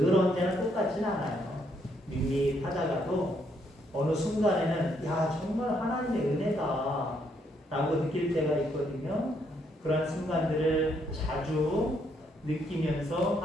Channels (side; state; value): both; normal; correlation 0.73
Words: 언제나 똑같진 않아요. 밋밋하다가도 어느 순간에는 야 정말 하나님의 은혜다 라고 느낄 때가 있거든요. 그런 순간들을 자주 느끼면서